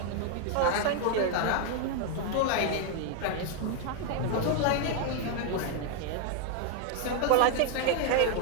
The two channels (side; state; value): both; different; correlation 0.00